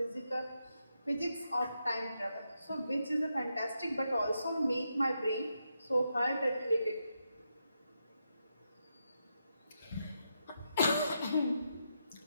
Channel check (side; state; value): both; inverted; correlation -0.83